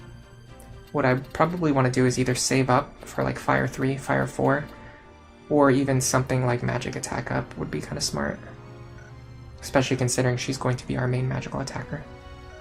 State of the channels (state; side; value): identical; both; correlation 1.00